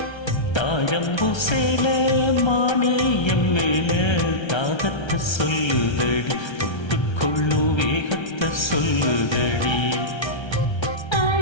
தாழம்பூ சேல மானேயம் மேல தாகத்தை சொல்லுதடி, தொட்டுக்கொள்ளும் வேகத்தை சொல்லுதடி.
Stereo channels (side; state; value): right; late; 1.3 ms